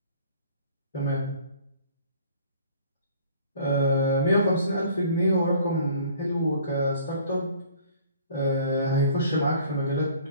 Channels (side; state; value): both; inverted; correlation -0.52